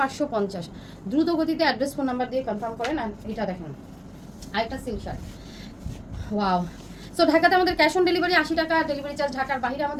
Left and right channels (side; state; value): both; identical; correlation 1.00